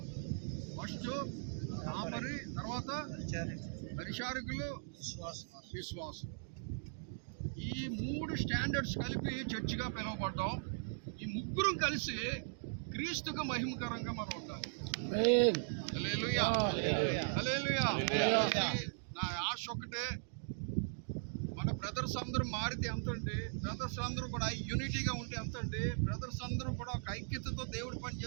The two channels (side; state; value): left; silent; digital silence